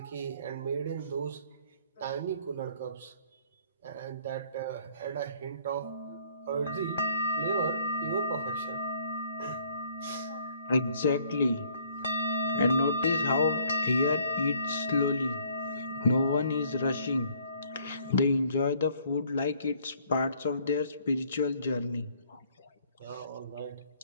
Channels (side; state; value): both; inverted; correlation -0.61